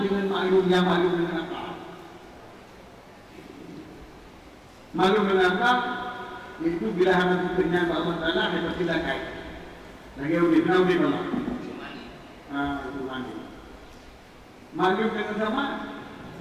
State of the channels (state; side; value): identical; both; correlation 1.00